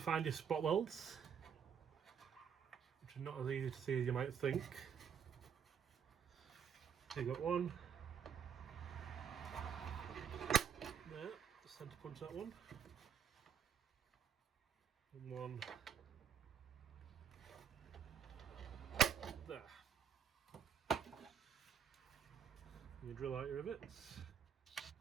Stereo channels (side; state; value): left; quieter; 7.8 dB